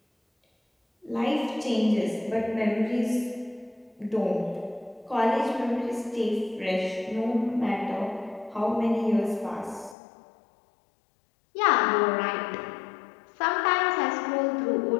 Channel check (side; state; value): right; drops out; at 10.0 s